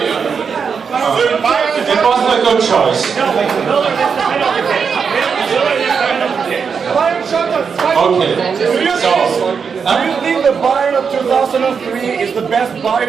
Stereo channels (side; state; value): left; quieter; 6.1 dB